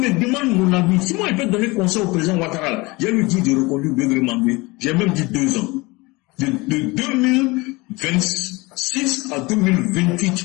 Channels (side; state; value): right; quieter; 23.9 dB